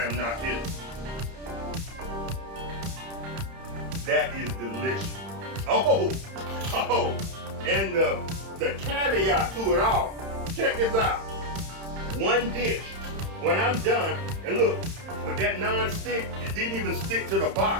am not kidding. That is delicious. Oh, and the caveat to it all. Check this out. One dish. When I'm done, and look, with that non-stick, it didn't even stick to the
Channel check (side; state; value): left; late; 31 ms